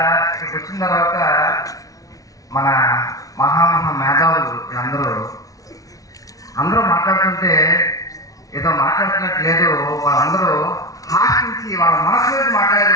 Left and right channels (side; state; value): right; late; 0.17 ms